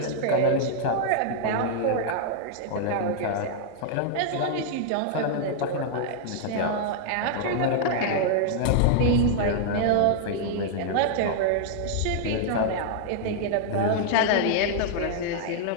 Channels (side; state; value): both; different; correlation -0.01